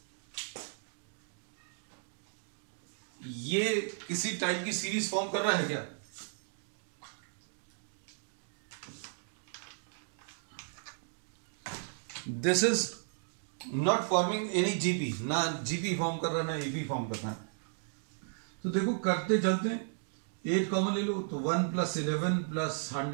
ये किसी टाइप की सीरीज फॉर्म कर रहा है क्या? This is not forming any GP, ना जीपी फॉर्म कर रहा है ना एपी फॉर्म कर रहा है। तो देखो करते चलते हैं, 8 कॉमन ले लो तो 1 + 11 +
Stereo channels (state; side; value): silent; left; digital silence